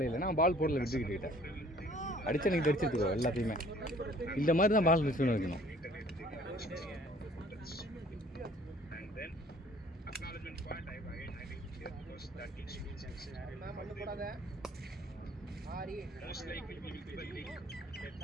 இல்லை. நான் பால் போடல மிட் விக்கெட் கிட்ட அடித்தா நீங்கள் அடிச்சிருக்கோம் எல்லாத்தையுமே. இந்த மாதிரி தான் பால் மிஸ் பண்ணி வைக்கணும். that needs to be sensitive. Most likely we will give a link.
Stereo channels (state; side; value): normal; both; correlation 0.55